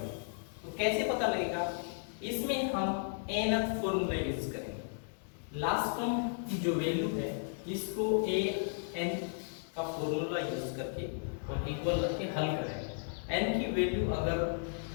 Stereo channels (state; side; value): silent; right; digital silence